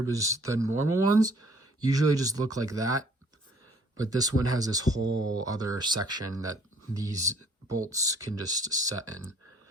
because the normal ones usually just look like that. But this one has this whole other section that these bolts can just set in.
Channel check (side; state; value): both; normal; correlation 0.59